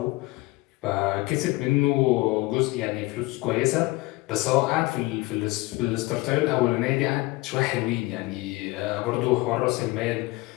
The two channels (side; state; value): right; quieter; 21.5 dB